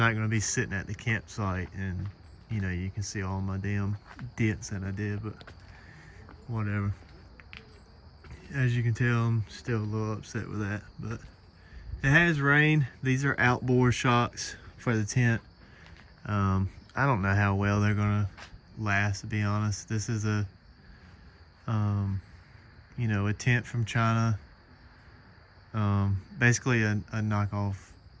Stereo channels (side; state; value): both; identical; correlation 1.00